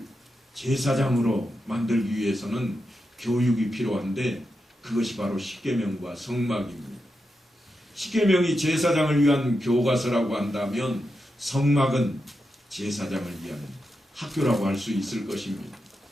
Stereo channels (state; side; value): normal; both; correlation 0.87